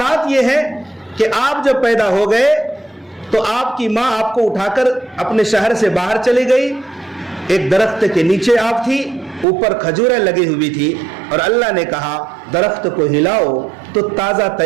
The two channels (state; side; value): drops out; left; at 9.5 s